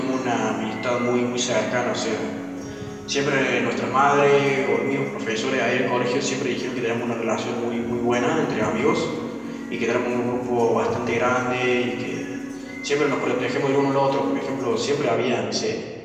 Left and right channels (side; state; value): both; identical; correlation 1.00